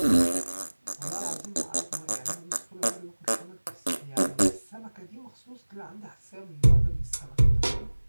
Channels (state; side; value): inverted; both; correlation -1.00